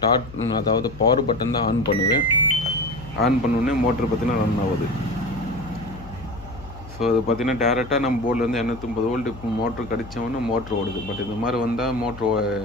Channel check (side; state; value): left; noise; hum, 16 dB below the sound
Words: அதாவது பவர் பட்டன் தான் ஆன் பண்ணுவேன். ஆன் பண்ணோடனே மோட்ரு பார்த்தீங்கன்னா ரன் ஆகுது. ஸோ அது பார்த்திங்கன்னா டேரெக்டாக நம்ம போர்ட்லேருந்து 230 வோல்ட்டு மோட்ரு கடித்தவொன்னே மோட்ரு ஓடுது. பட் இந்த மாதிரி வந்தால் மோட்ரு